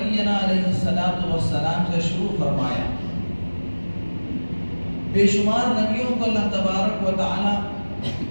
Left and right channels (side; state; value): both; inverted; correlation -1.00